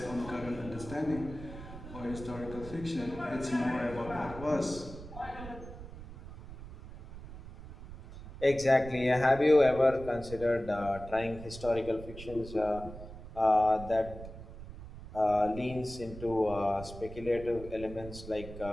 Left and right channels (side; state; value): right; noise; rumble, 13 dB below the sound